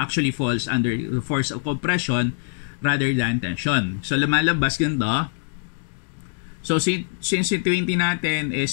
falls under the force of compression rather than tension. So, lumalabas ganito. So, since yung 20 natin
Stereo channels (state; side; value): silent; right; digital silence